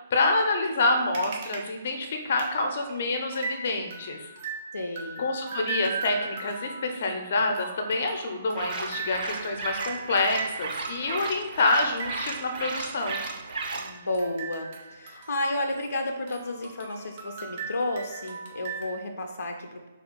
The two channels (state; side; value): inverted; both; correlation -0.67